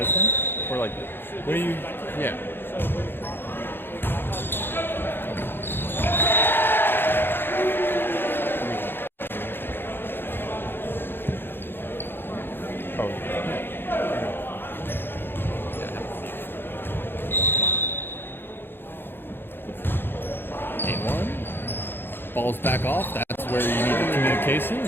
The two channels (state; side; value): late; right; 0.10 ms